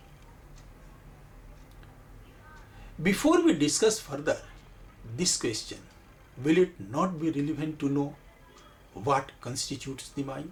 Before we discuss further this question, will it not be relevant to know what constitutes the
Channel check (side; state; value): both; identical; correlation 1.00